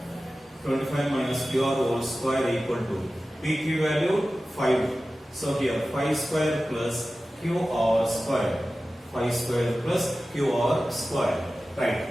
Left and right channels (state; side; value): normal; both; correlation 0.95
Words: 25 minus QR whole square equal to PQ value 5. So here 5 square plus QR square. 5 square plus QR square. Right.